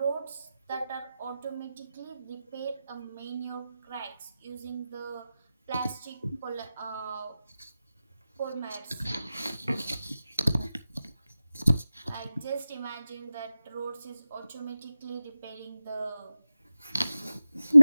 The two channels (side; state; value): both; inverted; correlation -0.95